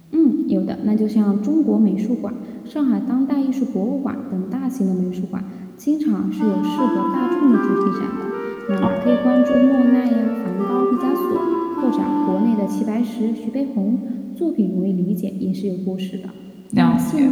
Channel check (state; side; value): identical; both; correlation 1.00